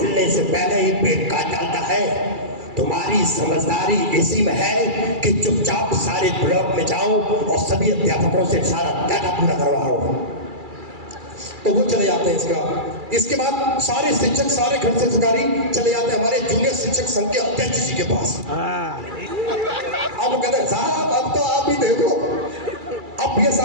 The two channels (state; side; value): late; left; 2.3 ms